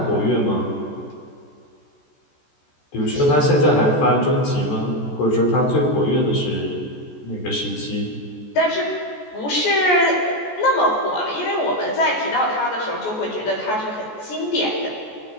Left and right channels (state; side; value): late; right; 14 ms